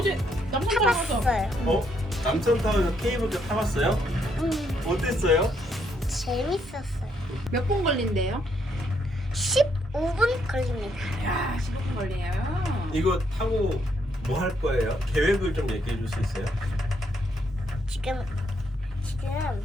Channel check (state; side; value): normal; both; correlation 0.74